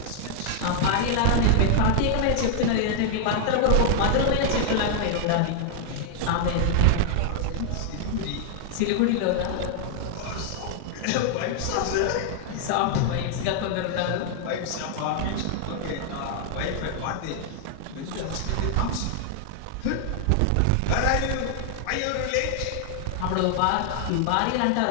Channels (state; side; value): different; both; correlation 0.00